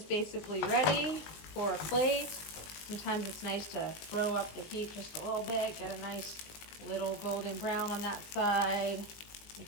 basically ready for a plate. Sometimes it's nice to throw up the heat just a little bit, get a nice little golden brown on that side,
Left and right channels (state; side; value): late; right; 19 ms